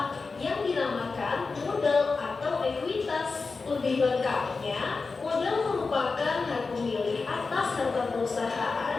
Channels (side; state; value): right; quieter; 4.3 dB